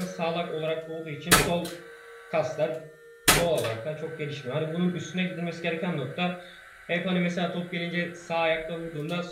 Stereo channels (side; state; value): both; identical; correlation 1.00